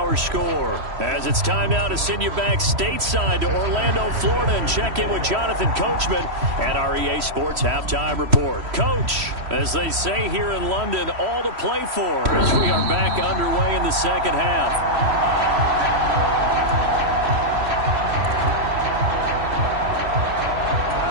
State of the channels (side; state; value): left; late; 3.1 ms